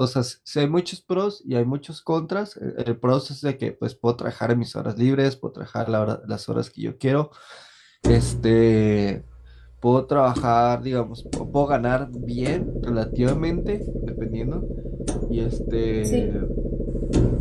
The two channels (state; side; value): identical; both; correlation 1.00